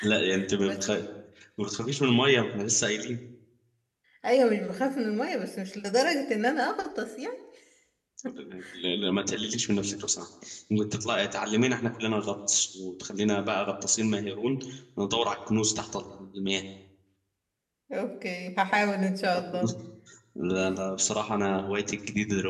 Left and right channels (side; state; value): both; identical; correlation 1.00